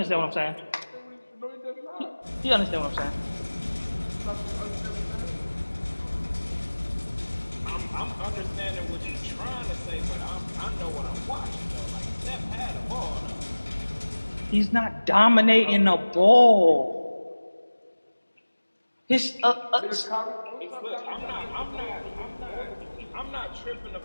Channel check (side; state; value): both; inverted; correlation -1.00